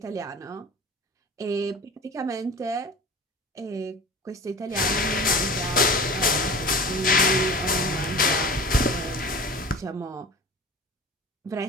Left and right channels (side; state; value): both; normal; correlation 0.38